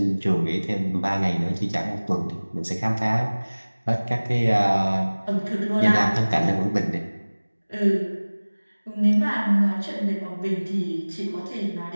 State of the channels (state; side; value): inverted; both; correlation -1.00